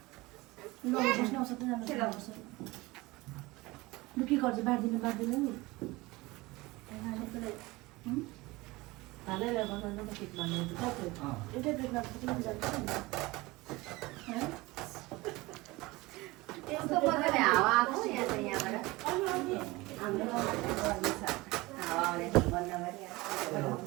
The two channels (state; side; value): quieter; left; 21.6 dB